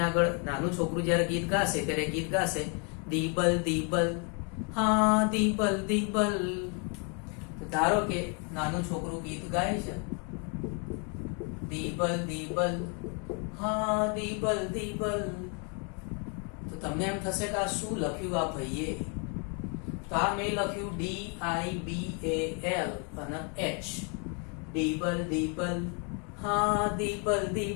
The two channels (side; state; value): right; quieter; 36.8 dB